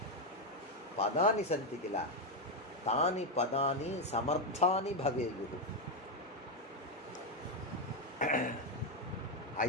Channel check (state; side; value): normal; both; correlation 0.05